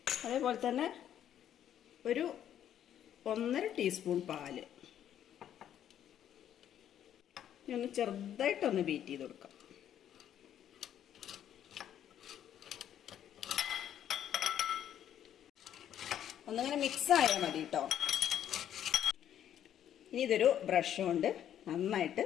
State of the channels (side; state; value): right; quieter; 10.4 dB